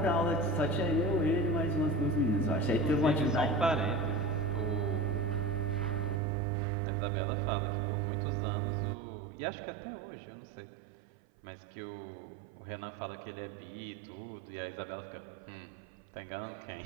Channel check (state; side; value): drops out; left; at 6.2 s